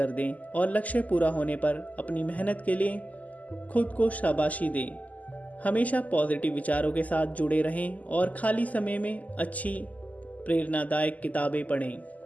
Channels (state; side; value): late; right; 0.075 ms